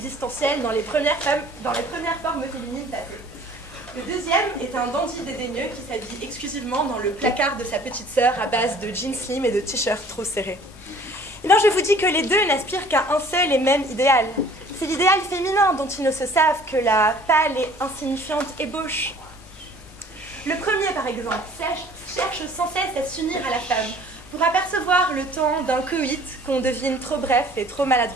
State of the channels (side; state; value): both; normal; correlation 0.52